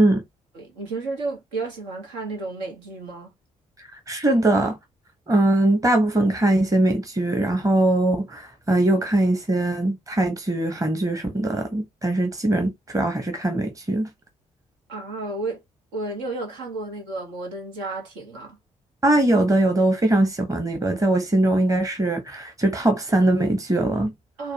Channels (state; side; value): normal; both; correlation 0.80